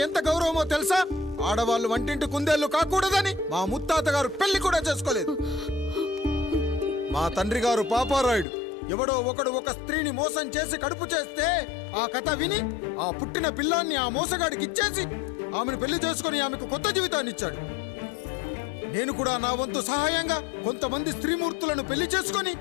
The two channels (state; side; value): drops out; right; at 8.5 s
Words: ఎంత గౌరవమో తెలుసా? ఆడవాళ్ళు వంటింటి కుందేళ్లు కాకూడదని మా ముత్తాత గారు పెళ్లి కూడా చేసుకోలేదు. మా తండ్రి గారు పాపారాయుడు ఎవడో ఒకడు ఒక స్త్రీని మోసం చేసి కడుపు చేస్తే ఆ కథ విని ఆ పుట్టిన పిల్లాన్ని ఆ మోసగాడికి ఇచ్చేసి ఆమెను పెళ్లి చేసుకుని ఆమెకు కొత్త జీవితాన్ని ఇచ్చాడు. నేను కూడా నా వంతు సహాయంగా కొంతమంది స్త్రీమూర్తులను పెళ్లి చేసుకుని